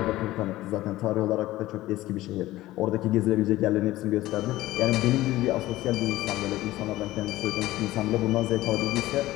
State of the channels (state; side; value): quieter; right; 16.6 dB